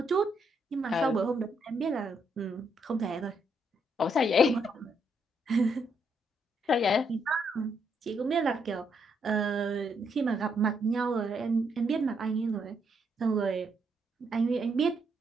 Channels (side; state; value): both; normal; correlation 0.76